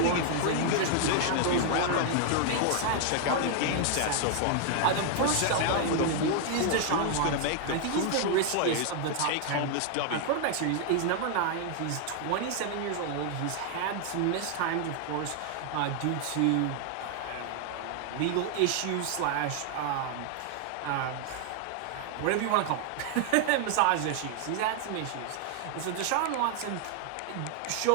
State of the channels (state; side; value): different; both; correlation 0.00